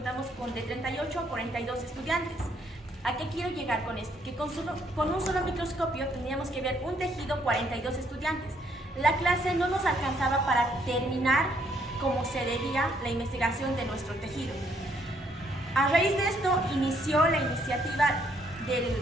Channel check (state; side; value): normal; both; correlation 0.69